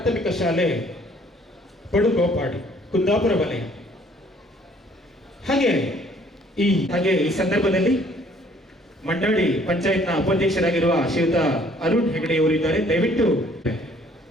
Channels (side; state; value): both; normal; correlation 0.60